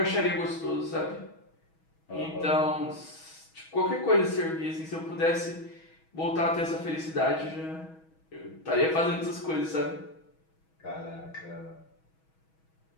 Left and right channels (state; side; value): late; right; 6.2 ms